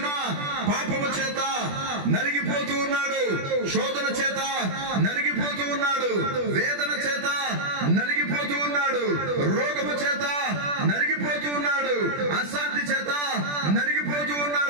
పాపము చేత నలిగిపోతూ ఉన్నాడు, శోధన చేత నలిగిపోతూ ఉన్నాడు, వేదన చేత నలిగిపోతూ ఉన్నాడు, రోగము చేత నలిగిపోతూ ఉన్నాడు, అశాంతి చేత నలిగిపోతూ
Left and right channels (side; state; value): left; late; 21 ms